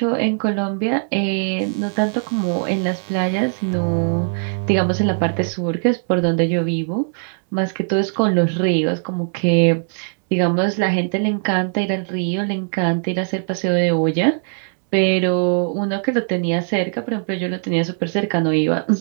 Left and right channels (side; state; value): left; silent; 65 dB below the other